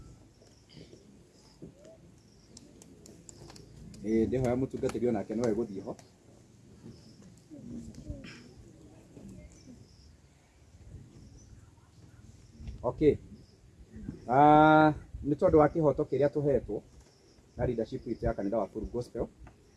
Ndĩhoya mũtungatĩri onake no egũthiĩ ho. Okay. Nĩ tondũ wa kĩhoto kĩrĩa tũhetwo na leadership itũ ya kanitha wa Full Gospel,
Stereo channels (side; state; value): both; identical; correlation 1.00